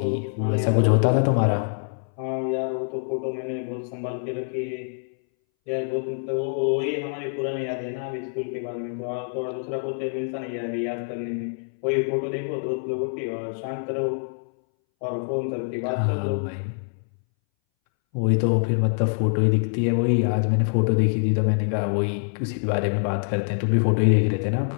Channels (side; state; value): right; silent; 61 dB below the other